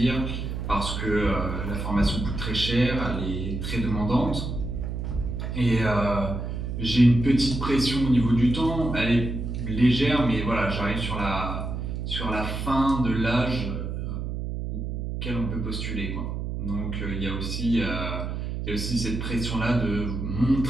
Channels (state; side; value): noise; right; hum, 4 dB below the sound